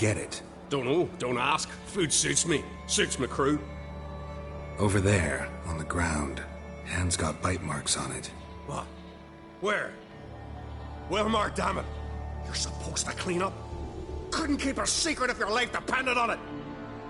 it? Don't know. Don't ask. Food suits me. Suits my crew. Over there, on the ground. Hand's got bite marks on it. What? Where? Well, Mark, damn it. You're supposed to clean up. Couldn't keep a secret if your life depended on it.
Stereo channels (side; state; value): both; identical; correlation 1.00